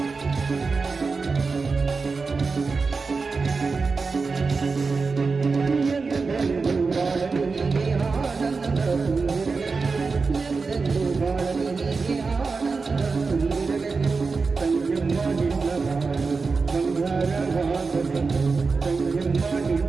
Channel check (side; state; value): left; quieter; 4.5 dB